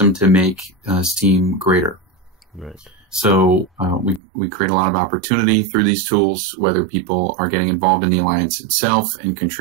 to make Steem greater. Right. So we create a lot of opportunity through these tools, whether people are getting involved in the Alliance itself and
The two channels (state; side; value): drops out; left; at 4.2 s